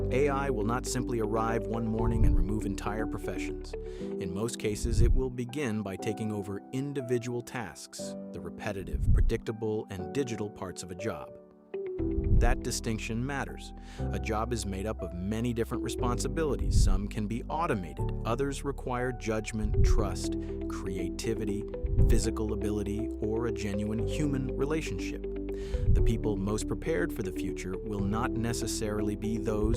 AI will not simply arrive one morning and remove entire professions. In most cases, it will begin by taking over individual tasks, the repetitive, predictable, and digital parts of a job. That distinction matters. A job is made up of many different responsibilities. Some can be automated, others require judgment, trust, creativity, physical ability, or a genuine human relationship. The people most prepared for the future will not necessarily be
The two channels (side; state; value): both; identical; correlation 1.00